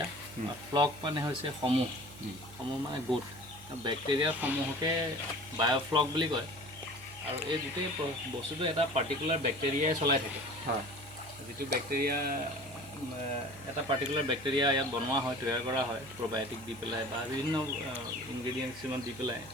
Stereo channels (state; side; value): noise; right; hum, 20 dB below the sound